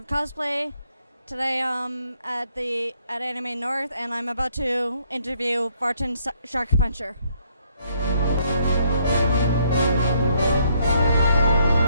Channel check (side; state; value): both; inverted; correlation -0.70